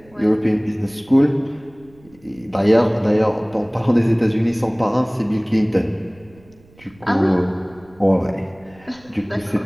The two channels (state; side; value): noise; right; rumble, 28 dB below the sound